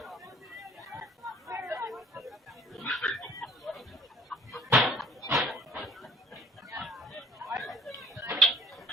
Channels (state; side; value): normal; both; correlation 0.50